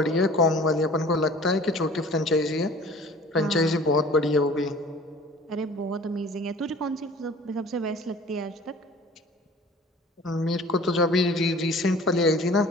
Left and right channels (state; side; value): normal; both; correlation 0.46